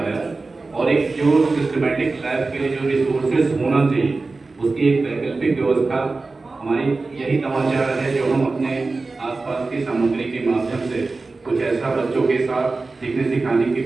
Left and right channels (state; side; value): quieter; left; 3.7 dB